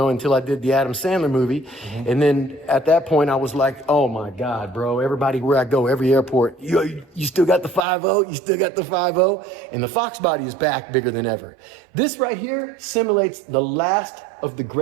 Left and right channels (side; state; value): left; drops out; at 7.8 s